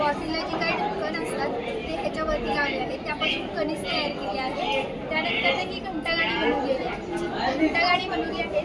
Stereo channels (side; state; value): both; identical; correlation 1.00